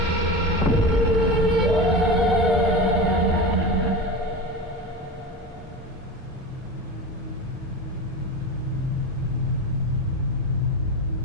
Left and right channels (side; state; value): both; normal; correlation 0.25